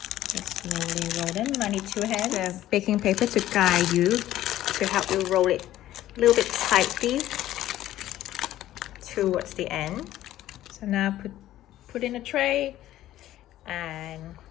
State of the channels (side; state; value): right; quieter; 13.8 dB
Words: Just slowly roll them. I need 2 hands. The baking paper to guide you, to help you roll it a little bit tightly towards the end. So now put in a tray, and